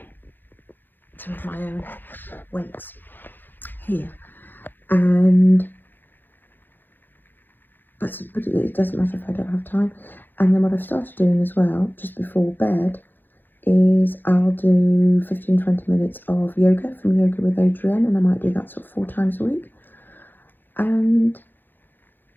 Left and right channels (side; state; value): right; late; 0.092 ms